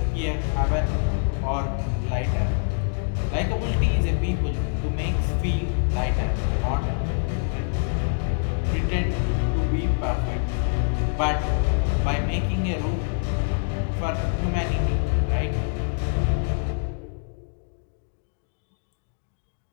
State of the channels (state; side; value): silent; right; digital silence